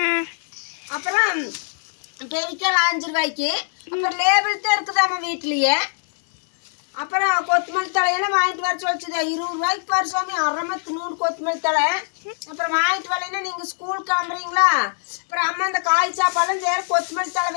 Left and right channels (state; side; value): silent; right; 63 dB below the other